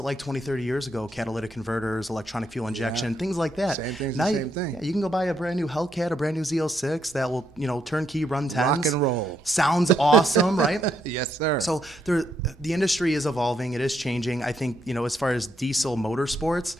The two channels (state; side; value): normal; both; correlation 0.76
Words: like 20, 30 years ago? Catalytic converters, electronic fuel injection, things like that. Same thing's now the same thing. Yeah, you can go buy a brand new Hellcat, a brand new Z06 that will, you know, turnkey run 10s. Rock and roll. Sounds awesome, right? Yes, sir. So the industry is evolving. It is changing. I think, you know, as far as diesel motorsports,